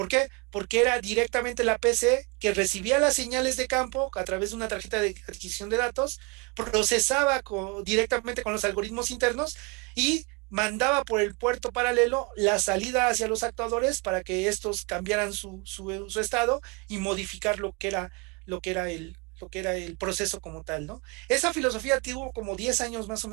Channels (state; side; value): quieter; left; 28.8 dB